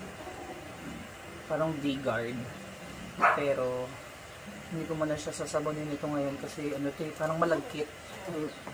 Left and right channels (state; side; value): noise; left; hiss, 29 dB below the sound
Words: Parang V-guard. Pero hindi ko muna siya sasabonin ito ngayon kasi ano ito eh, parang malagkit.